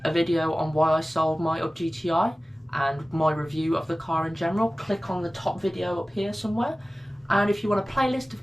video on why I sold my Up GTI and my review of the car in general, click on the top video up here somewhere. And if you want a playlist of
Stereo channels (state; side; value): normal; both; correlation 0.97